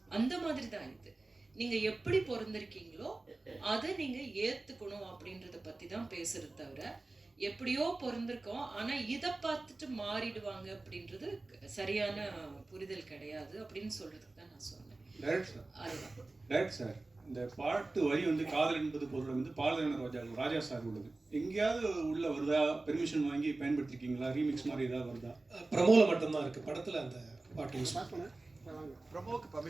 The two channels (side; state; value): left; quieter; 3.2 dB